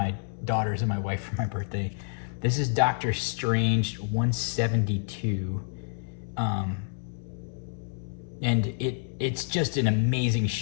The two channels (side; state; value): right; silent; 58 dB below the other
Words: daughters and my wife for my birthday. This is Doctor Strange 172. And it's just an amazing